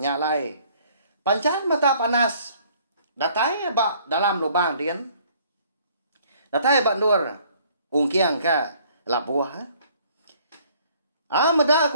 Pancan mata panas. Datai bak dalam lubang dian. Datai bak nur ungkiang ka labuah. Meda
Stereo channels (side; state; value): both; inverted; correlation -0.59